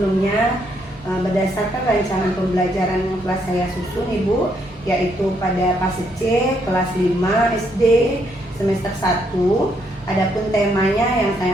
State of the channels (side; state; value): both; normal; correlation 0.73